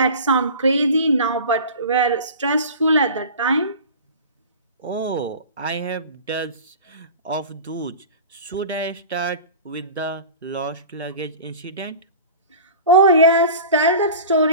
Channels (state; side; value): inverted; both; correlation -0.36